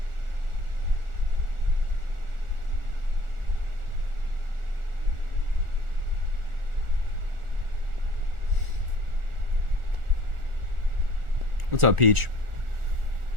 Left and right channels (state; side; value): late; left; 1.4 ms